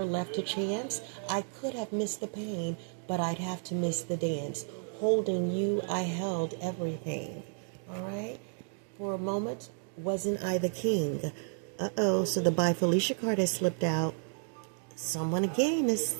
left to chance. I could have missed the pain, but I'd have to miss the dance. Holding you, I held everything, all right? For a moment, wasn't I the king? Uh-oh, so the By Felicia card has slipped out. Someone again has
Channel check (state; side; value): silent; left; 56 dB below the other